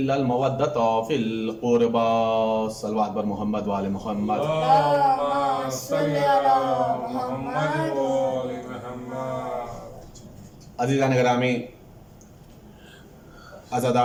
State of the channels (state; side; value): identical; both; correlation 1.00